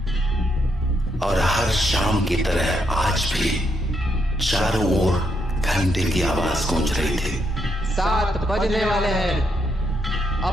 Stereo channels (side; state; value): both; normal; correlation 0.77